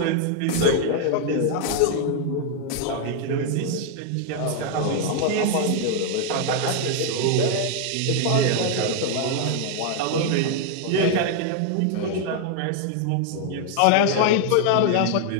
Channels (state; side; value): different; both; correlation 0.00